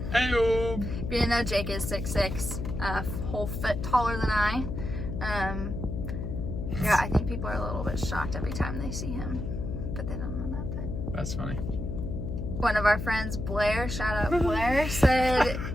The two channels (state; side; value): noise; left; hum, 4 dB below the sound